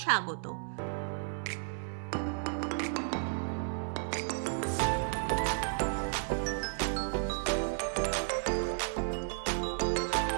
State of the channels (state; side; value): silent; left; 56 dB below the other